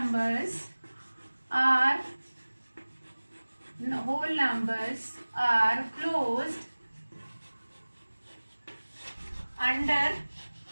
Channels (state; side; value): inverted; both; correlation -1.00